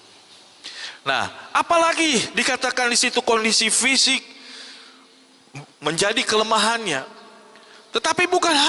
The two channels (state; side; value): identical; both; correlation 1.00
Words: Nah, apalagi dikatakan di situ kondisi fisik menjadi kelemahannya. Tetapi bukan